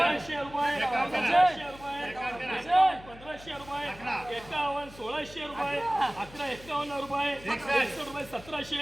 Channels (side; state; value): left; noise; hum, 19 dB below the sound